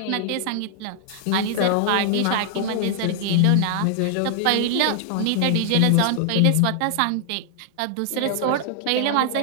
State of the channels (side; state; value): both; different; correlation -0.01